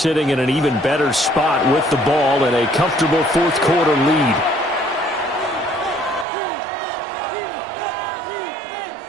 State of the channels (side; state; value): left; drops out; at 6.2 s